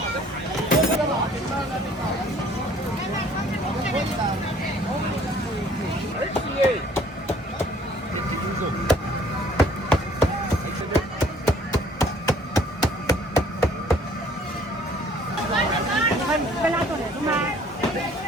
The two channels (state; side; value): normal; both; correlation 0.57